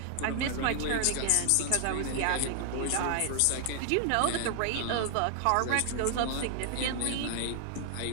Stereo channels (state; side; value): different; both; correlation 0.00